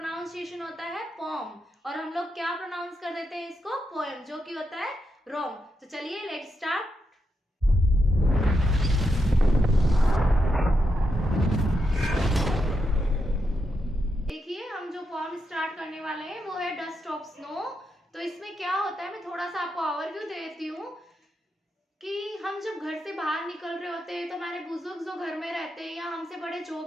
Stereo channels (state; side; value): normal; both; correlation 0.84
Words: होता है पॉम और हम लोग क्या प्रोनाउंस कर देते हैं इसको पोएम, जो कि होता है रॉन्ग। तो चलिए लेट्स स्टार्ट। फॉर्म स्टार्ट करने वाले हैं वो है डस्ट ऑफ स्नो। तो इसमें क्या होता है, मैं थोड़ा सा आपको ओवरव्यू दे देती हूँ कि हम जब घर से बाहर निकल रहे होते हैं तो हमारे बुजुर्ग जो घर में रहते हैं या हमसे बड़े जो